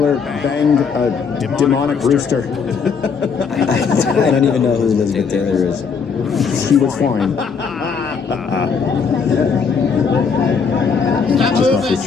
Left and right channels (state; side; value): quieter; right; 5.8 dB